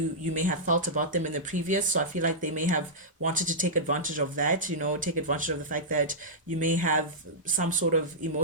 may have felt about them in the previous, so I feel like they may have wanted to take advantage of that, take advantage of the fact that you may have some sort of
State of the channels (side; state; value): both; normal; correlation -0.12